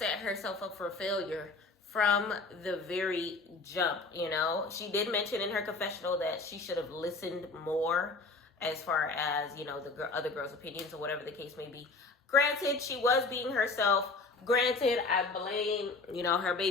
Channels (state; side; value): quieter; right; 3.7 dB